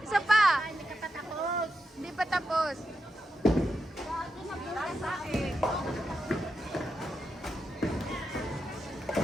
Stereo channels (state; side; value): normal; both; correlation 0.86